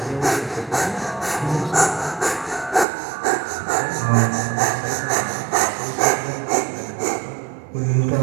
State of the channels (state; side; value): drops out; left; at 2.9 s